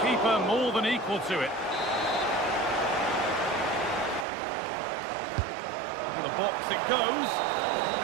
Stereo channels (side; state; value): left; drops out; at 4.2 s